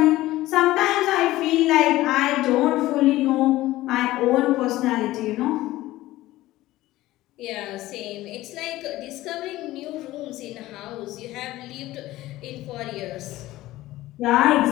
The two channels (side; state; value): right; quieter; 16.6 dB